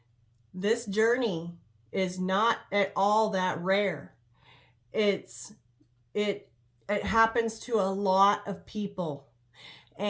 this journey is not at all that rare. It happens to a lot of people.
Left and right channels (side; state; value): both; identical; correlation 1.00